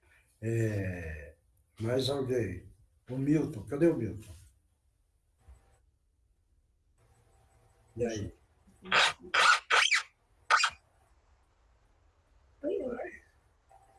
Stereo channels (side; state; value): both; identical; correlation 1.00